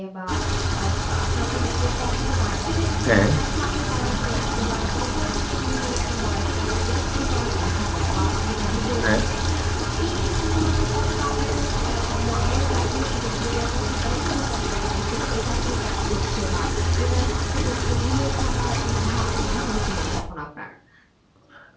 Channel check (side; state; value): both; identical; correlation 1.00